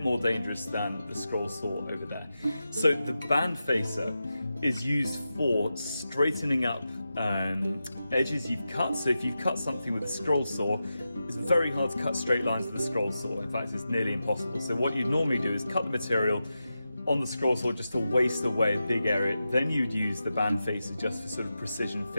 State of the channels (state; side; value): inverted; both; correlation -0.91